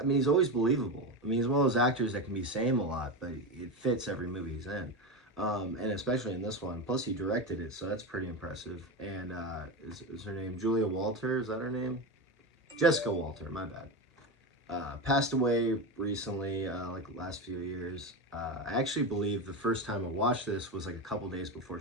mean, he's always believable. I mean, he's one of those actors that can be saying a lot, but it fits every movie he's in. And especially in this one. Plus, he directed it, so that's pretty impressive. And is her name Julia Walter? Is that her name? Jessica Walter, my bad. Passed away recently, like the last few years. I actually believe the first time I watched this was like a couple days before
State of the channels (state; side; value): normal; both; correlation 0.18